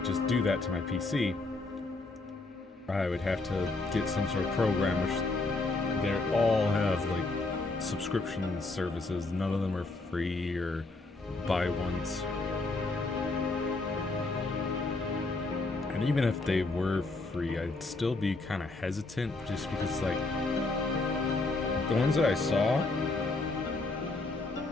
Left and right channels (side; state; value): right; quieter; 3.3 dB